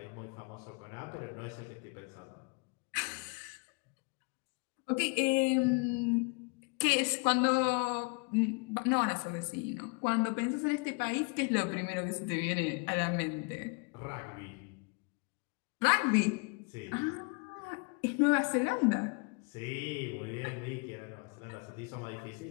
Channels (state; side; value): quieter; right; 32.9 dB